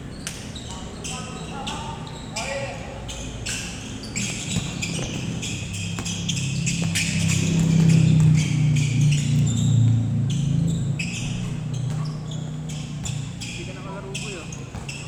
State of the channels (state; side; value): identical; both; correlation 1.00